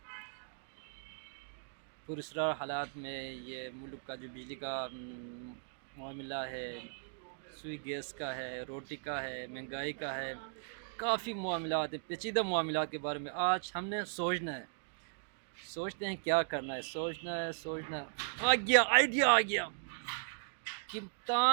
پراسرار حالات میں۔ یہ ملک کا جو بجلی کا معاملہ ہے، سوئی گیس کا ہے، روٹی کا ہے، مہنگائی کا ہے، کافی معاملات ہیں، پیچیدہ معاملات کے بارے میں آج ہم نے سوچنا ہے۔ سوچتے ہیں کیا کرنا ہے، سوچنا ہے۔ آئیڈیا آ گیا،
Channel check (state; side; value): silent; left; digital silence